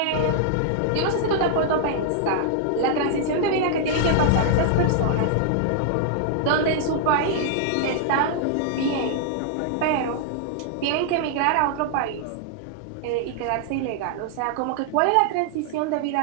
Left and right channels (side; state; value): both; different; correlation -0.01